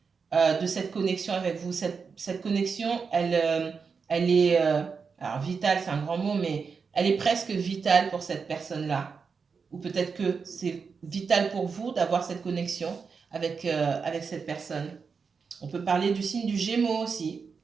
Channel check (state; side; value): quieter; left; 5.4 dB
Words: de cette connexion avec vous. Cette connexion, elle est, alors vitale, c'est un grand mot, mais elle est presque vitale pour cette personne-là. Ou peut-être que c'est vital pour vous d'avoir cette connexion avec cette personne. On peut parler du signe du Gémeaux aussi.